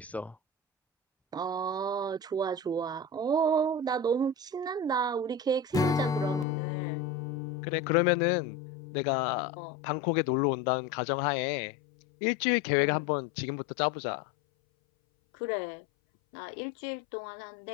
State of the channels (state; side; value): drops out; right; at 6.5 s